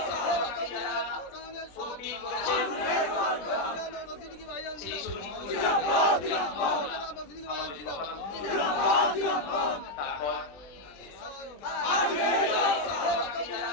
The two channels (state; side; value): late; right; 20 ms